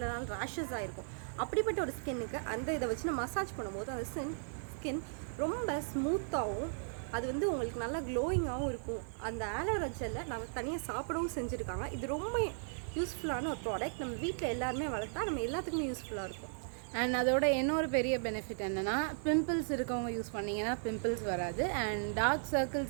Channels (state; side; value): silent; left; 54 dB below the other